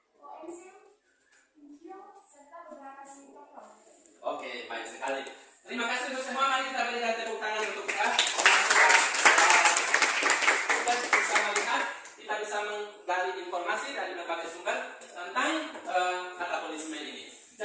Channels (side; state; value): both; identical; correlation 1.00